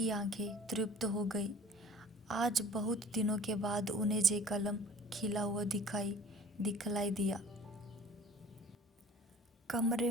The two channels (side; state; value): both; normal; correlation 0.47